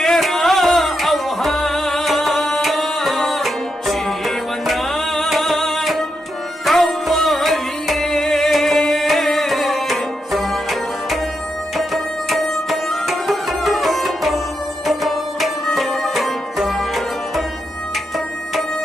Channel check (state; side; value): normal; both; correlation 0.84